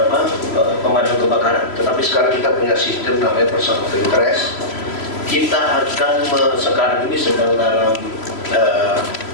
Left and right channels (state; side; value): late; right; 3.0 ms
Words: pemadam kebakaran, tetapi sekarang kita punya sistem namanya person of interest. Kita akan sekarang ini sedang dalam